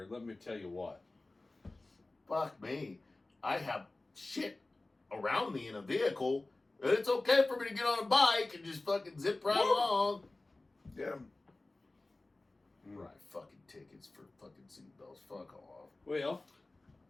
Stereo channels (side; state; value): right; quieter; 3.0 dB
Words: Let me tell you what. Fuck me. I have shit around me in a vehicle, and it's okay for me to get on a bike and just fucking zip right along. Yeah. Right, fucking tickets for fucking seatbelts. Fuck off. Well,